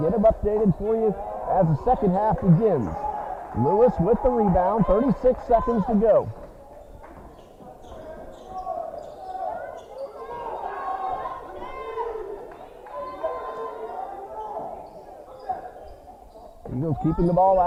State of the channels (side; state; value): both; identical; correlation 1.00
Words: them updated for you as the second half begins. Lewis with the rebound, 36 seconds to go. Eagles keeping the ball